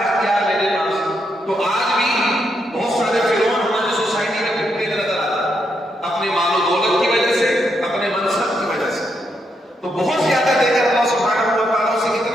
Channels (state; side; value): normal; both; correlation 0.80